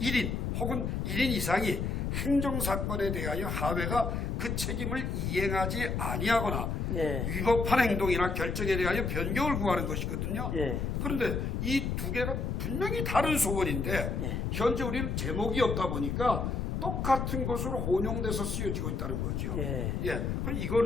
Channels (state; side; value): noise; left; rumble, 1 dB below the sound